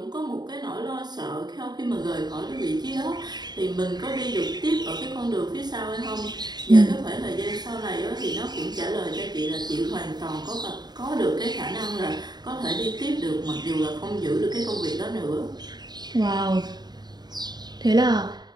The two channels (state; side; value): late; left; 0.20 ms